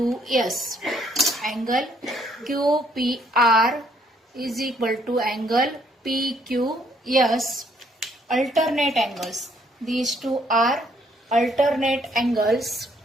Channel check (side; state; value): both; normal; correlation 0.67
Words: Angle QPR is equal to angle PQS. Alternate angles. These two are alternate angles.